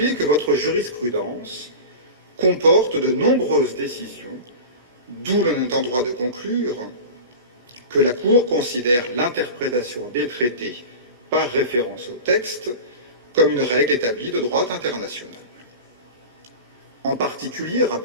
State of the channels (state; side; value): inverted; both; correlation -0.31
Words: que votre jurisprudence comporte de nombreuses décisions, d'où l'on est en droit de conclure que la Cour considère l'interprétation des traités par référence au texte comme une règle établie de droit international. En particulier,